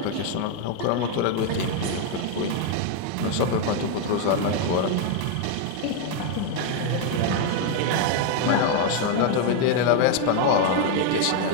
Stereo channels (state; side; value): different; both; correlation 0.01